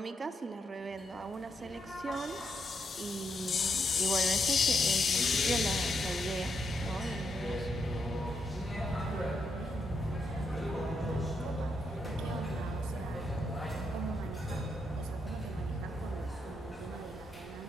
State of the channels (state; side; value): normal; both; correlation 0.80